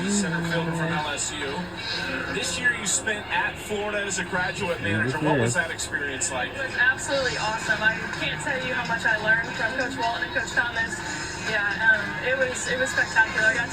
center fielder from LSU. This year you spent at Florida as a graduate manager. What was that experience like? It was absolutely awesome. I can't tell you how much I learned from Coach Walton and Coach Thomas. Yeah, it was spectacular. I got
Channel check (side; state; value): both; identical; correlation 1.00